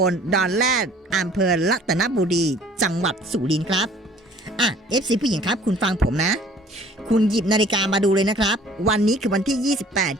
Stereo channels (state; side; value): normal; both; correlation 0.53